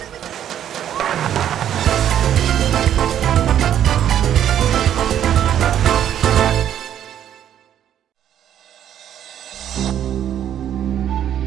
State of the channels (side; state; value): left; quieter; 10.4 dB